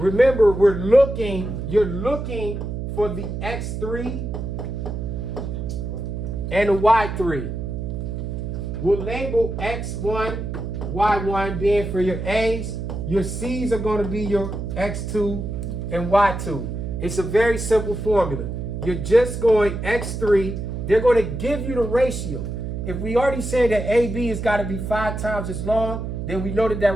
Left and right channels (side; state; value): right; noise; hum, 5 dB below the sound